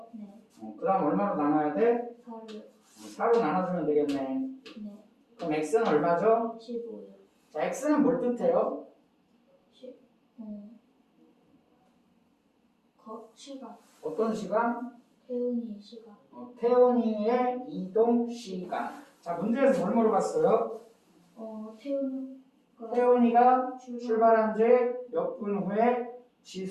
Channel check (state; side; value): identical; both; correlation 1.00